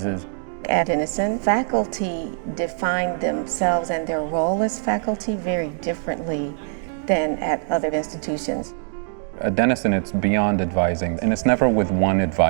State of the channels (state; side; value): silent; left; digital silence